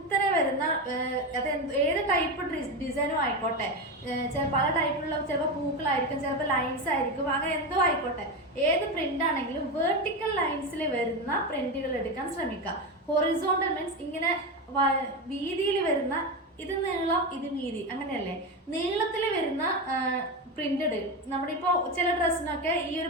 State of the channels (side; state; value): both; normal; correlation 0.16